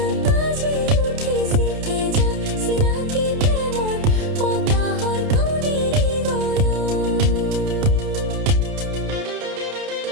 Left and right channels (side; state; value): left; late; 30 ms